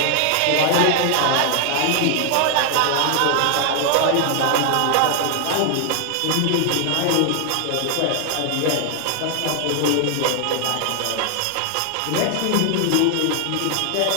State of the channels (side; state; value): both; different; correlation 0.00